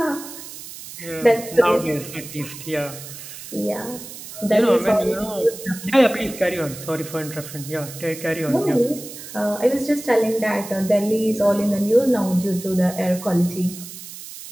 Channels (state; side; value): noise; right; hiss, 13 dB below the sound